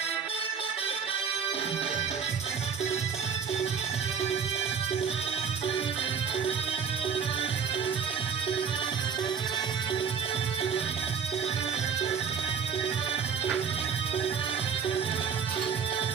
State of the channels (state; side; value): quieter; left; 6.8 dB